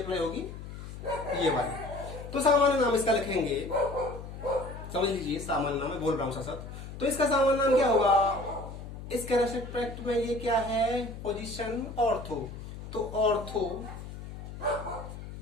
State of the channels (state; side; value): noise; left; hum, 11 dB below the sound